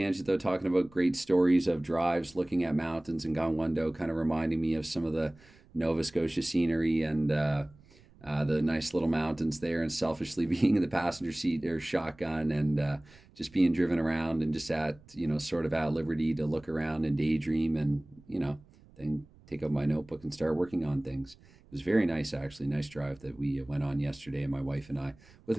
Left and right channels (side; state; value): right; noise; rumble, 26 dB below the sound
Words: though, talking about great stories of drives, looking at mountains and Gangwon-do, kind of reminding me of some of the Nova Scotia scenery and the nice little mountains there, and selfishly being in the passenger seat or shotgun and just being driven around and just at, sort of at liberty to look around and daydream and, then take out my notebook and start working on things. It was very nice, actually. Nice drive that we went on yesterday, my wife and I, with